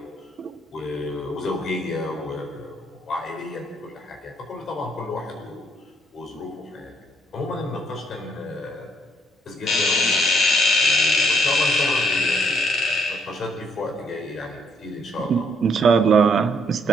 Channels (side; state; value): both; normal; correlation 0.69